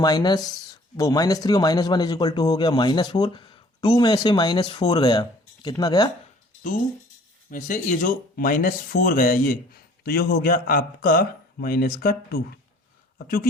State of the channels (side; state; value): both; normal; correlation 0.54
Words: और -1 इज इक्वल टू हो गया -4, 2 में से -4 गया, कितना गया 2 में से ये जो -4 गया ये, तो ये हो गया आपका -2। अब चूंकि